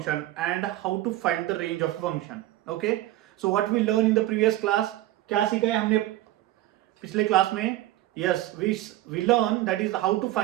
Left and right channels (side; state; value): left; quieter; 15.5 dB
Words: and how to find the range of a function. Okay, so what we learned in the previous class, क्या सीखा है हमने पिछले class में? Yes, we learned that is how to